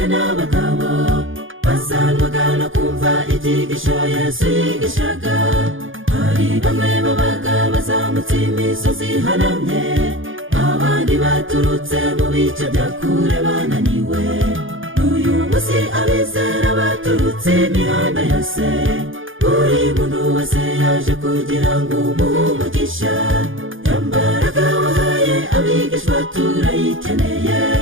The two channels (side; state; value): left; late; 0.58 ms